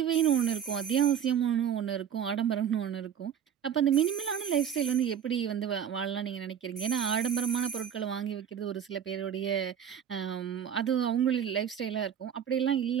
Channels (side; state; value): left; quieter; 8.7 dB